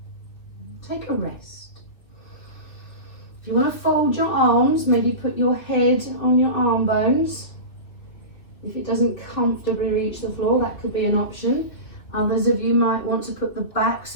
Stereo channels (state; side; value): late; right; 2.7 ms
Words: Take a rest. If you want to fold your arms, maybe put your head on your arm bones. If it doesn't comfortably reach the floor, that could be an option. Others of you might want to put the backs